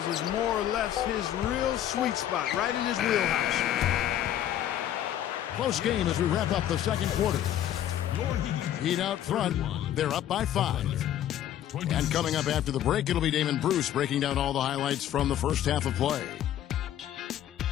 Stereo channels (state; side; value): quieter; right; 11.4 dB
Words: is more or less his real sweet spot, right in his wheelhouse. Close game as we wrap up the second quarter. Heat out front. They're up by 5. And coming up after the break, it'll be Damon Bruce breaking down all the highlights from the first half of play.